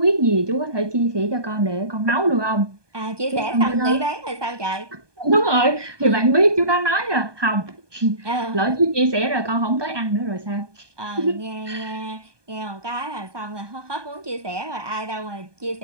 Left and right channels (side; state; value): left; late; 1.2 ms